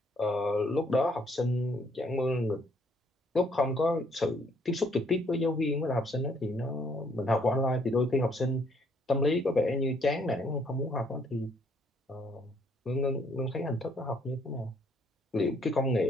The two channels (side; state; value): both; normal; correlation 0.67